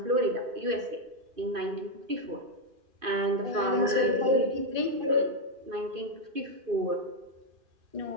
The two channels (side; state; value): left; late; 2.5 ms